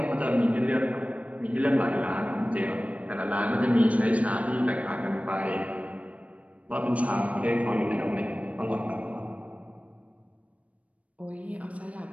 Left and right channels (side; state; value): left; late; 0.066 ms